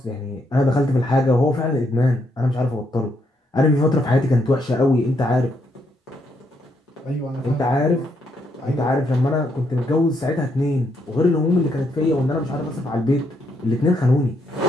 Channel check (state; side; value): normal; both; correlation 0.76